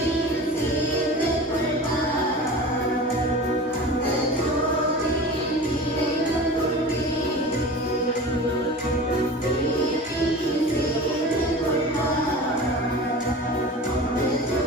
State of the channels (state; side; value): normal; both; correlation 0.34